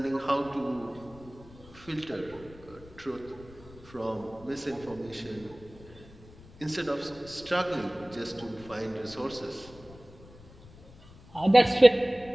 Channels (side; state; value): left; noise; rumble, 21 dB below the sound